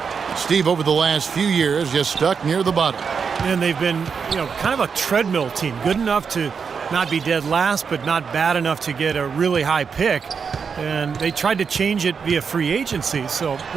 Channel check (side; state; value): left; quieter; 6.0 dB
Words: Steve, over the last few years, just stuck near the bottom. And they've been, kind of a treadmill team. Good enough to not be dead last, but not bad enough to get a really high pick. And they tried to change it via free agency, so